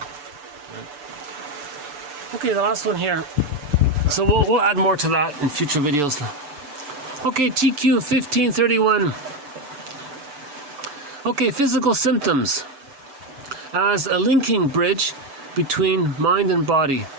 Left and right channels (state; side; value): late; left; 6.9 ms